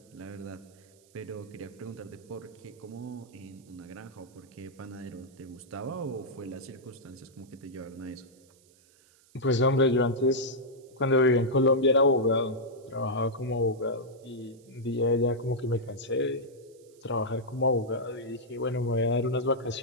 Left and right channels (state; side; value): noise; right; hiss, 29 dB below the sound